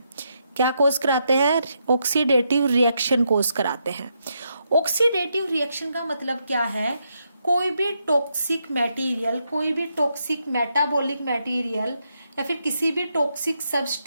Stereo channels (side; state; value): both; inverted; correlation -0.80